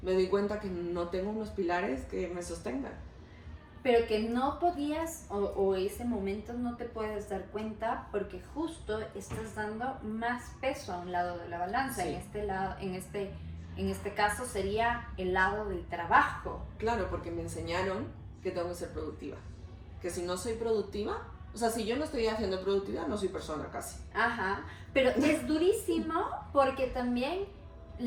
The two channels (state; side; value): identical; both; correlation 1.00